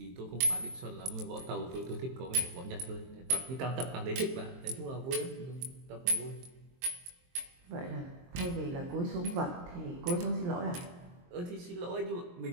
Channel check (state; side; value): late; left; 23 ms